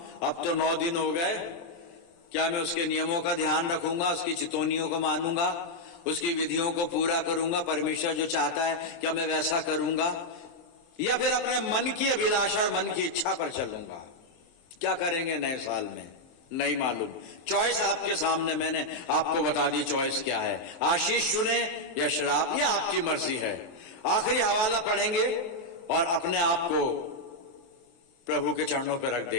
अब तो 9 दिन हो गए। क्या मैं उसके नियमों का ध्यान रखूंगा, उसकी चितौनियों को मानूंगा, उसकी विधियों को पूरा करूंगा? परमेश्वर जो चाहता है क्या मैं वैसा करूंगा, या फिर अपने मन की अभिलाषा और मन की इच्छा पर चलूंगा? क्या करेंगे नए साल में? नहीं मालूम। चॉइस आपके सामने, मैंने आपको बता दी चॉइस क्या है। आशीष चुने या श्राप, या आपकी मर्जी है। आखिरी हवाला पढ़ेंगे और अपने आप को प्रभु के चरणों पर रख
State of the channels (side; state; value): right; late; 23 ms